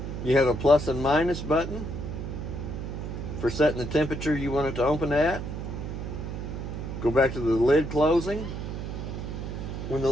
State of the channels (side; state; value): right; noise; hum, 6 dB below the sound